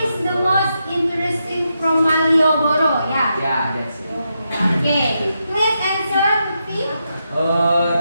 the most interesting from Malioboro? Yeah. Yeah, that's it. Okay, please answer, Lutfi.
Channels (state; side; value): inverted; both; correlation -0.84